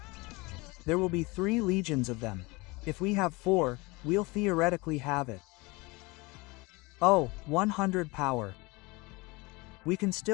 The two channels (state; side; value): quieter; right; 24.7 dB